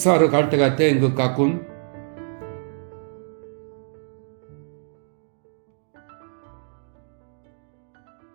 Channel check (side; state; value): left; silent; digital silence